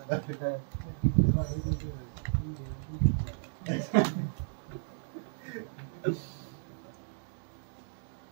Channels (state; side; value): silent; left; digital silence